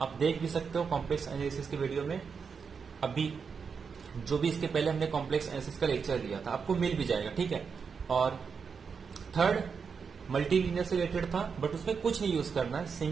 देख भी सकते हो कॉम्प्लेक्स एनालिसिस के वीडियो में, अभी जो भी इसके पहले हमने कॉम्प्लेक्स एनालिसिस का लेक्चर दिया था आपको मिल भी जाएगा, ठीक है। और थर्ड, मल्टीलीनियर से रिलेटेड था, बट उसमें कुछ नहीं यूज करना है,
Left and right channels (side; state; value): left; quieter; 5.9 dB